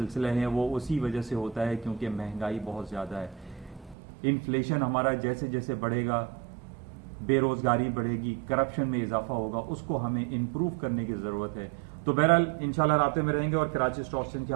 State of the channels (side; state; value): left; drops out; at 4.0 s